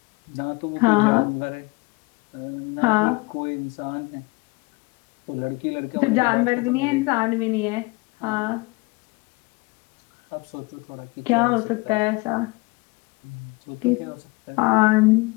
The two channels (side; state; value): right; quieter; 25.9 dB